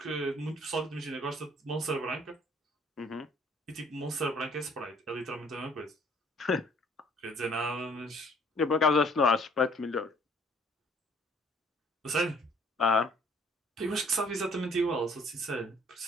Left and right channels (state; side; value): normal; both; correlation 0.59